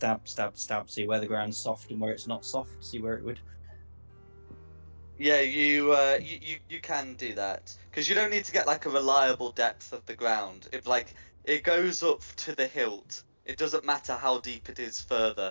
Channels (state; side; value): inverted; both; correlation -1.00